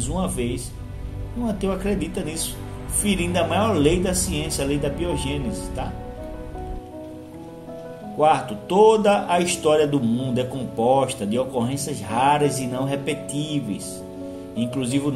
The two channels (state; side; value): identical; both; correlation 1.00